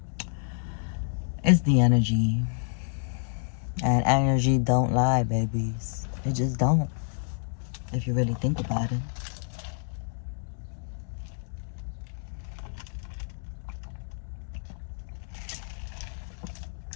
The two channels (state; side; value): silent; right; digital silence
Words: It's the energy. And energy don't lie, babies. It just don't. If you really think about it.